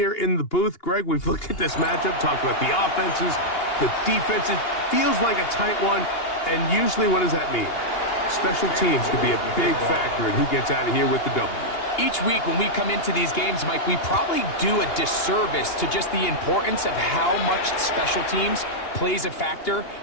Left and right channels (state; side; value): late; right; 2.8 ms